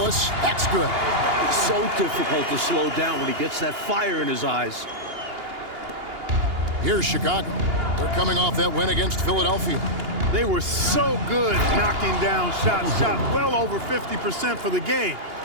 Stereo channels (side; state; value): left; late; 2.8 ms